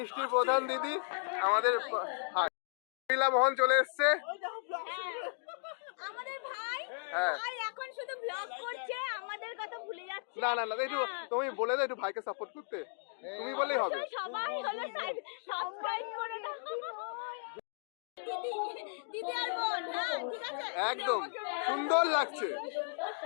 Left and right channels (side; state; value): right; silent; digital silence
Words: প্রধান দিদি আমাদের মহিলা মোহন চলে এসছে। আমাদের ভাই হ্যাঁ, ভাই এখন শুধু ব্লগ করছে, আমাদের কথা ভুলে যাচ্ছে। না একটু তুমি বলে দাও একটু ভাইকে সাপোর্ট করতে, তুমি বললেই হবে। সবাই হলো সাবস্ক্রাইব করে দাও। দিদি আর বোন, হ্যাঁ ঠিক আছে, একদম সুন্দর লাগছে।